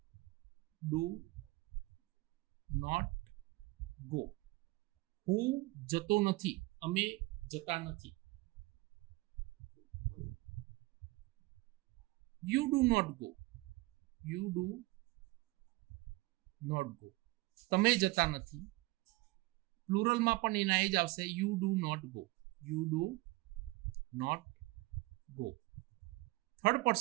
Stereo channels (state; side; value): quieter; left; 21.4 dB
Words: do not go. હું જતો નથી, અમે જતા નથી. You do not go, you do not go. તમે જતા નથી. પ્લુરલમાં પણ એના એ જ આવશે, you do not go, you do not go. Third